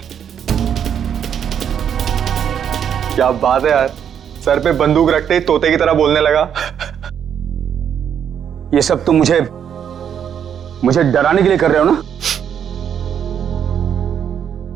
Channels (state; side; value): quieter; left; 8.5 dB